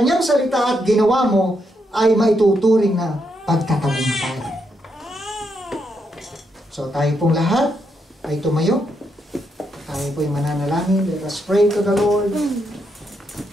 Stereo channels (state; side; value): normal; both; correlation 0.80